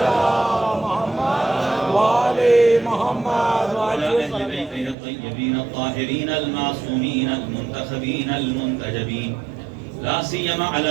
محمد وآل محمد وعلى أهل بيته الطيبين الطاهرين المعصومين المنتخبين المنتجبين لا سيما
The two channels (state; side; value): drops out; left; at 5.0 s